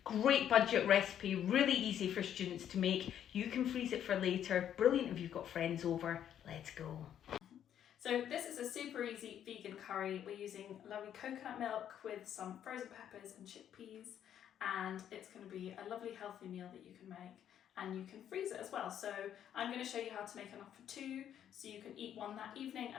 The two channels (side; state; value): right; quieter; 10.0 dB